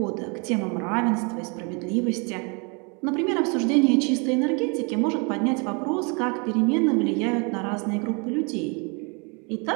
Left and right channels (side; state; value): left; quieter; 33.0 dB